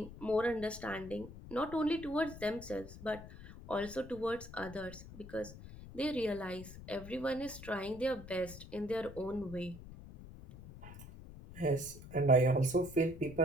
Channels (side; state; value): left; noise; rumble, 14 dB below the sound